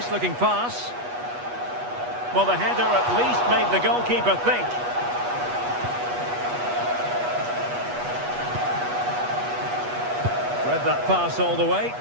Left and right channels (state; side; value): late; left; 8.3 ms